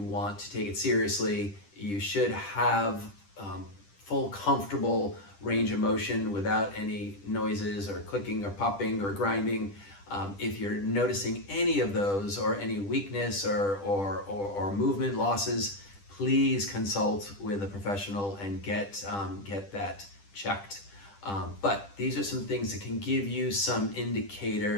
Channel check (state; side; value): late; right; 10 ms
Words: want to take it seriously. You should have full comfortable range of motion without any noises or clicking or popping or grinding. If you're noticing any of those or any weakness or movement losses, please consult with a professional and get that checked. But these are some things that can give you some